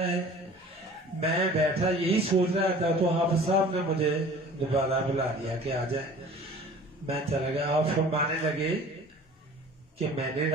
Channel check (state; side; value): normal; both; correlation 0.45